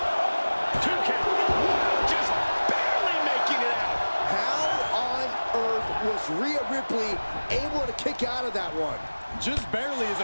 2 count. Wow, just barely making it out. How on earth was Rhea Ripley able to kick out of that one? Just barely is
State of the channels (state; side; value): inverted; both; correlation -1.00